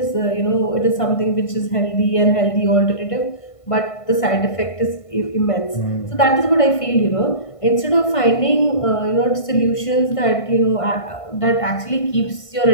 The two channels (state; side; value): late; right; 1.5 ms